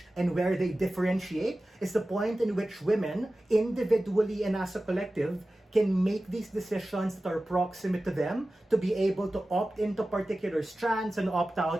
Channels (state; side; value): normal; both; correlation 0.95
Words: and where they differentiate is the point in which women, individually and as a collective, can make these decisions that are proximate to them to be able to opt into particular strands and opt